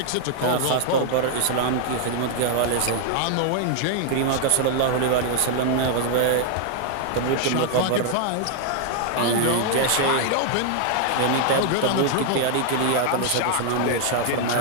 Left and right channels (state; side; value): different; both; correlation 0.00